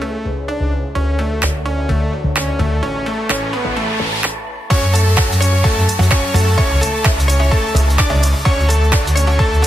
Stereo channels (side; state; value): both; normal; correlation 0.88